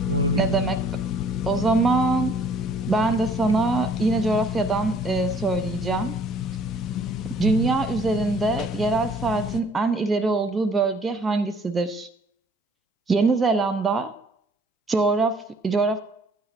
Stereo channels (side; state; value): both; normal; correlation 0.58